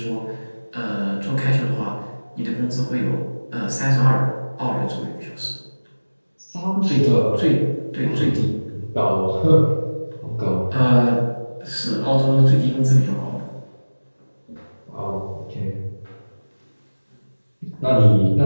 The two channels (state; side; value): inverted; both; correlation -1.00